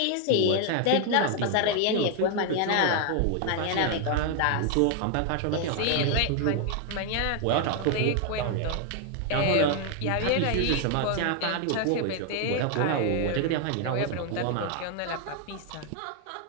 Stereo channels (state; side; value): different; both; correlation 0.00